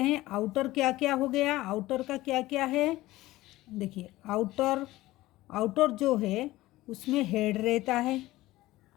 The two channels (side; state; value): right; quieter; 17.4 dB